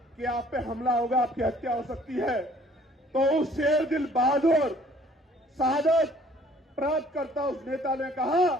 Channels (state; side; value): normal; both; correlation 0.57